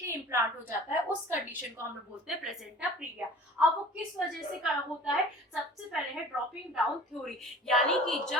इम्प्लांट हो जाता है, उस कंडीशन को हम लोग बोलते हैं प्लेसेंटा प्रीविया। अब वो किस वजह से होता है, सबसे पहले है ड्रॉपिंग डाउन थ्योरी, यानी कि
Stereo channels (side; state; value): both; normal; correlation 0.44